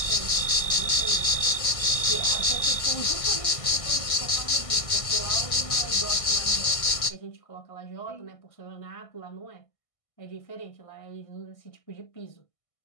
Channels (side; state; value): right; late; 1.6 ms